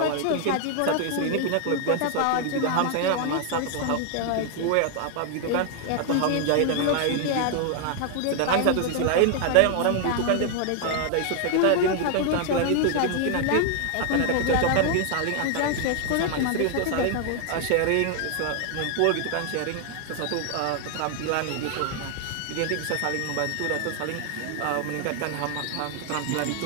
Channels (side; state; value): both; different; correlation 0.00